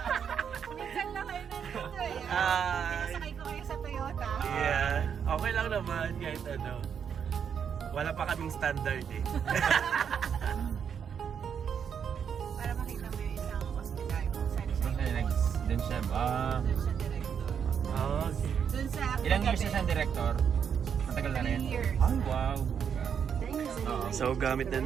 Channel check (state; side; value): quieter; left; 7.6 dB